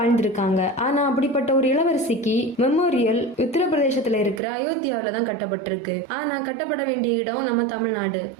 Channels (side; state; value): left; drops out; at 4.4 s